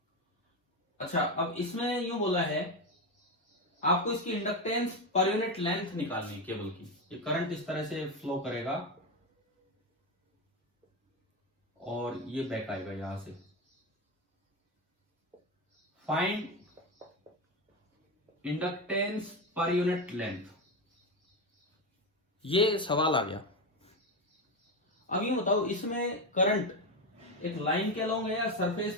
अच्छा, अब इसमें यूं बोला है आपको इसकी इंडक्टेंस पर यूनिट लेंथ निकालनी है केबल की। ये करंट इस तरह से फ्लो करेगा और ये बैक आएगा यहां से। Find inductance per unit length, ये सवाल आ गया। अब ये बताओ इसमें करंट एक लाइन के अलोंग है या सरफेस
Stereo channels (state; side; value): normal; both; correlation 0.14